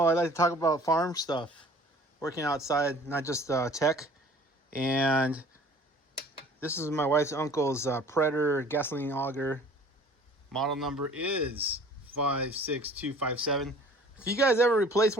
I like to talk about farm stuff, working outside, not just tech. And this is my wife's uncle's Predator gasoline auger. Model number is 56257. If you guys ever replace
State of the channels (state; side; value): normal; both; correlation 0.50